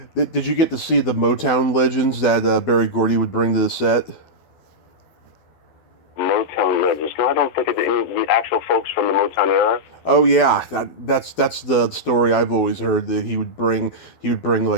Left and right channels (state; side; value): late; right; 12 ms